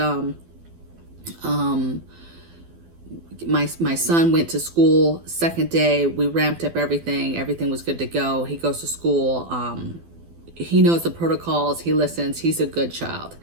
My son went to school second day. We ramped up everything. Everything was good to go. He goes to school. He knows the protocols. He listens. He's a good child.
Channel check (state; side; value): late; left; 12 ms